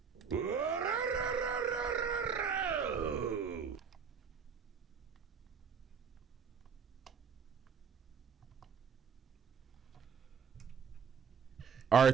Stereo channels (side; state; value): left; quieter; 6.5 dB